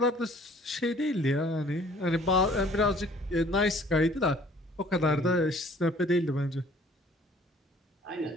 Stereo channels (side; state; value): both; normal; correlation 0.55